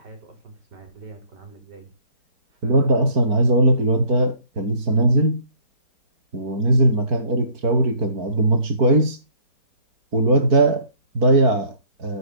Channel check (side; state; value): left; late; 4.5 ms